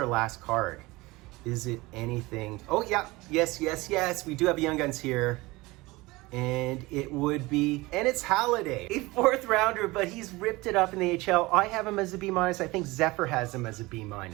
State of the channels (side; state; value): left; quieter; 21.6 dB